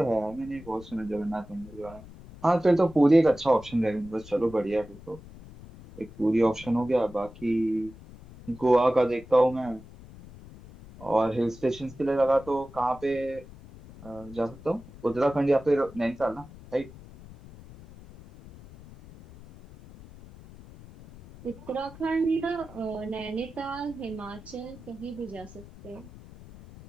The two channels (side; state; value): left; noise; rumble, 18 dB below the sound